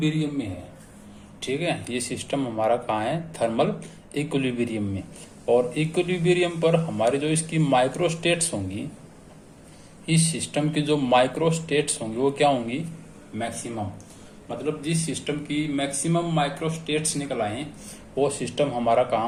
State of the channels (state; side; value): identical; both; correlation 1.00